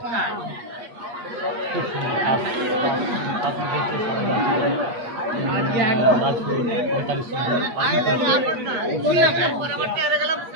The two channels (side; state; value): left; late; 8.3 ms